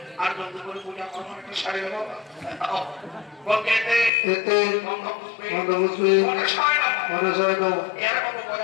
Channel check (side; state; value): right; drops out; at 4.1 s